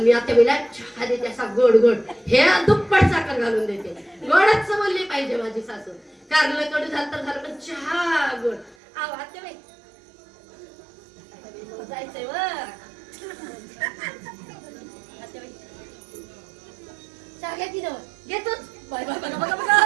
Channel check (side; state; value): left; drops out; at 8.8 s